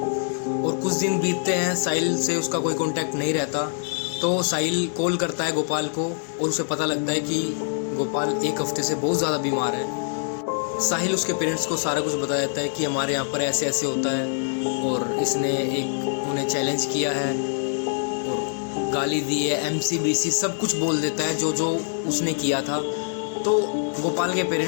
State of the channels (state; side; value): silent; right; digital silence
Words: और कुछ दिन बीतते हैं, साहिल से उसका कोई कांटेक्ट नहीं रहता। तो साहिल कॉल करता है गोपाल को और उसे पता लगता है कि गोपाल एक हफ्ते से बहुत ज़्यादा बीमार है। साहिल उसके पेरेंट्स को सारा कुछ बता देता है कि हमारे यहाँ पर ऐसे ऐसे होता है और इसने उन्हें चैलेंज किया है और गाली दी है, MCBC सब कुछ बोल देता है जो जो उसने किया था। तो गोपाल के